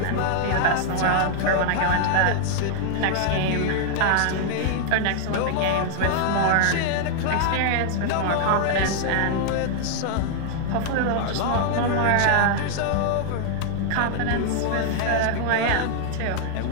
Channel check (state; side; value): different; both; correlation 0.00